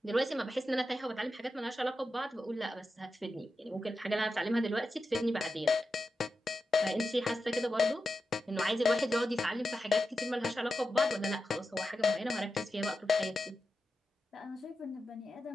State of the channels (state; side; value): normal; both; correlation 0.90